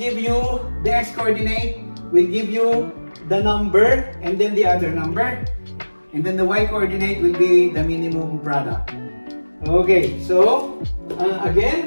you the x coordinate, will give you the number and then the other number, and then the y coordinate will be the minimum product. Okay, so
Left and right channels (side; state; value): both; inverted; correlation -1.00